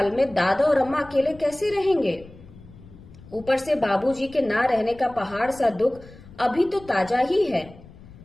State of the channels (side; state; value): left; noise; rumble, 20 dB below the sound